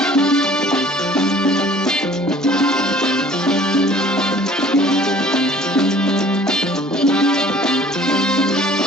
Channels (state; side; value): normal; both; correlation 0.52